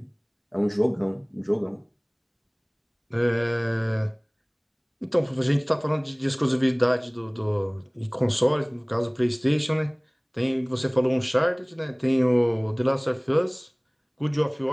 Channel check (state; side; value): identical; both; correlation 1.00